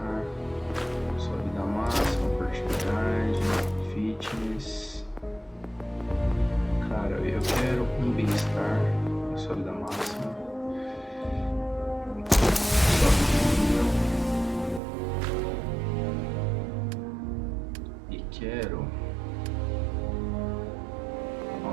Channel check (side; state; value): left; drops out; at 14.8 s